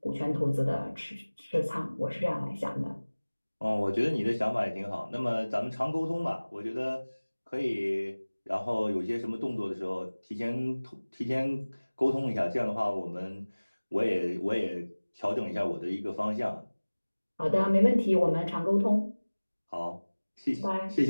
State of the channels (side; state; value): both; inverted; correlation -1.00